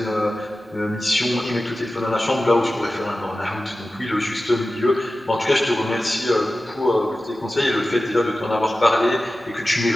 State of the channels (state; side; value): normal; both; correlation 0.95